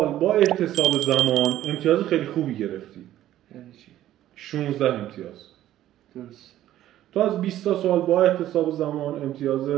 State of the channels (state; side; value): quieter; left; 13.1 dB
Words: با احتساب زمان امتیاز خیلی خوبی گرفتی. یعنی چی؟ 16 امتیاز. درست. تو از 20 تا سوال با احتساب زمان امتیاز